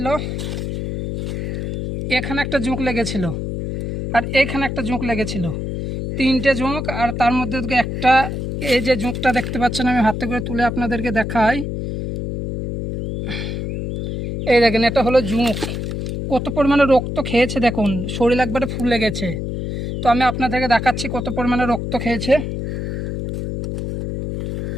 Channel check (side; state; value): left; noise; hum, 4 dB below the sound